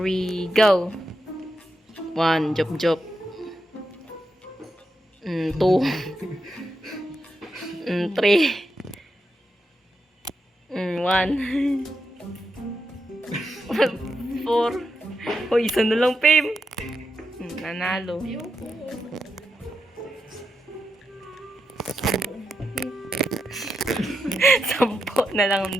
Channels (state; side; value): normal; both; correlation 0.85